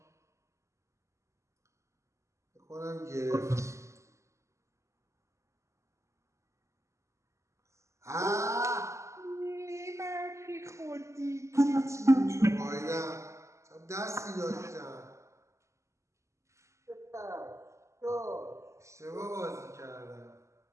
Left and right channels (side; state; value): left; late; 0.14 ms